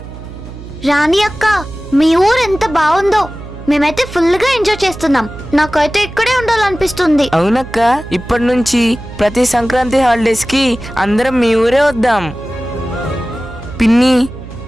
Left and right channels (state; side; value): noise; right; hum, 14 dB below the sound